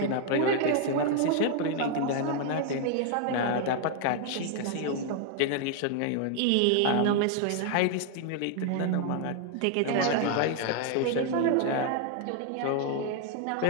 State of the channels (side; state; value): both; different; correlation 0.00